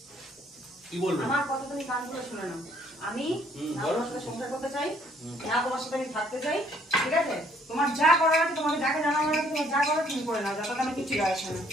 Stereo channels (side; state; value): both; normal; correlation 0.64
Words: কি বলবো? আমার কথা তুমি কান খুলে শুনে নাও। আমি না তোমার সাথে সংসার করতে চাই, না তোমার সাথে আমি থাকতে চাই, ঠিক আছে? তোমার যা করার আছে, তোমাকে যাকে জানানো আছে, তোমার যা করার তুমি করে নাও, যাতে আমি কিছু যায় আসে না,